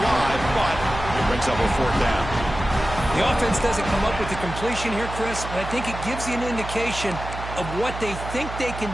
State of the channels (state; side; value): noise; right; hum, 9 dB below the sound